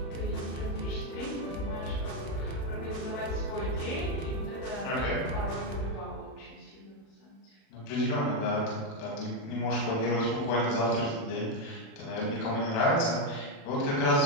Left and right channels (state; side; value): late; right; 36 ms